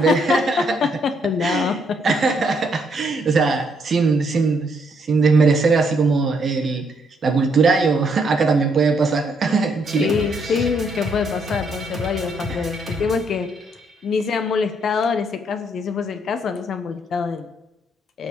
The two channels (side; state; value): both; normal; correlation 0.72